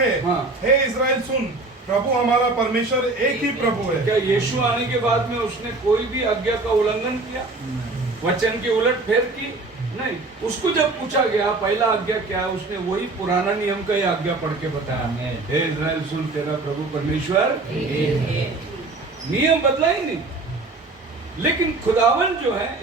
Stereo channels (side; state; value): left; quieter; 3.3 dB